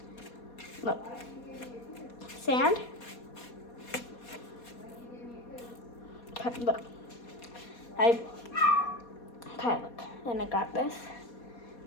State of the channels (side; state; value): right; late; 4.2 ms